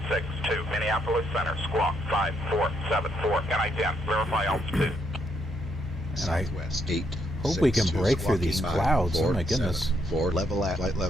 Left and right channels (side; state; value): both; normal; correlation 0.75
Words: Minneapolis Center, squawk 5474, NI-10, verify altitude. Southwest 8. Hope we can break through these clouds. Oh my goodness. 4 level at flight